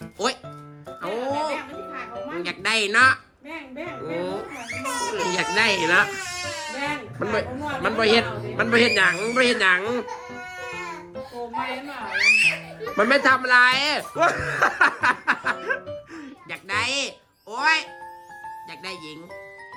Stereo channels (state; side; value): identical; both; correlation 1.00